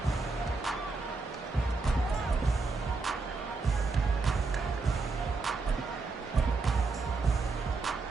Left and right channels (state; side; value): quieter; left; 3.9 dB